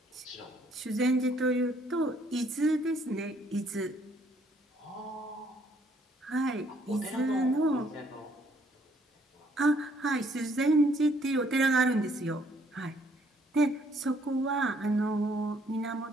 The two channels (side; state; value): both; normal; correlation 0.66